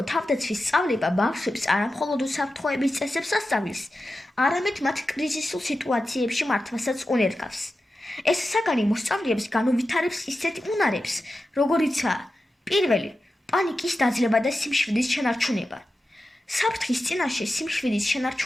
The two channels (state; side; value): normal; both; correlation 0.92